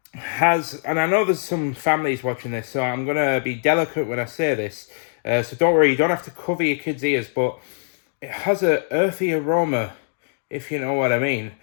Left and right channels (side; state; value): right; silent; digital silence